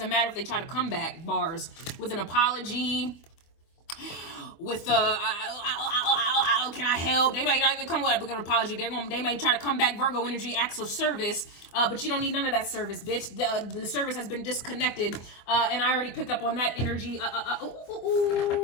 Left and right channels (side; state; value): right; late; 25 ms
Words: matter if they try to come back, bars, with an apology, with can I help? They might not even come with an apology. They may try to come back, Virgo energy, acts of service, but you don't need none of that service, bitch. The service has been disconnected, and I already picked up on that energy.